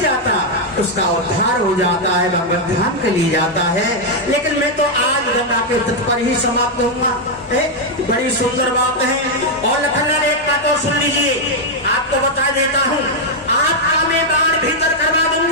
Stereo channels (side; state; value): both; normal; correlation 0.00